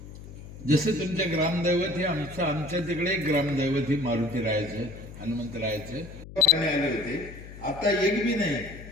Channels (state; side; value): noise; left; hum, 15 dB below the sound